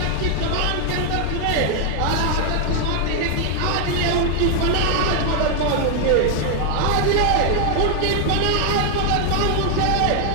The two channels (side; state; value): both; different; correlation 0.00